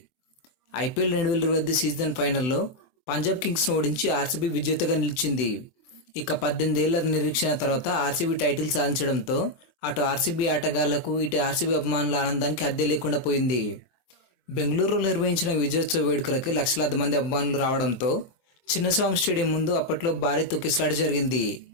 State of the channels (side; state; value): right; late; 24 ms